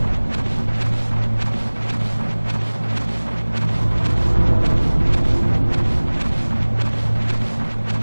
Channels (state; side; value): inverted; both; correlation -1.00